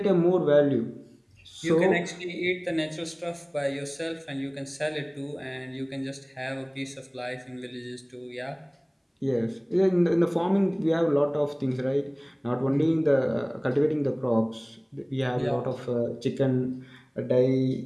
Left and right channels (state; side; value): identical; both; correlation 1.00